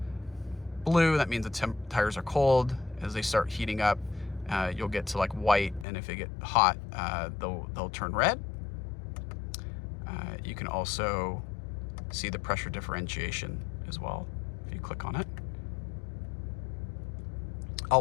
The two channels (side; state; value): right; drops out; at 5.9 s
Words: blue, that means the tires are cold. As they start heating up, you'll get to like white, and if they get hot, they'll turn red. You can also see the pressure differentiation as well if you click on it.